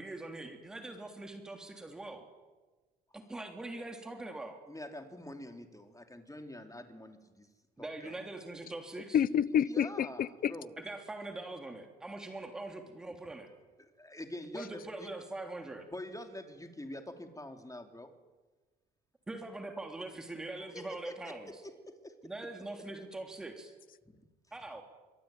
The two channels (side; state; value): right; quieter; 4.4 dB